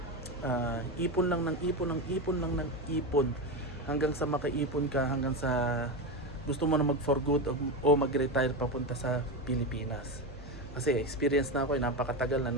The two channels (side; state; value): both; normal; correlation 0.16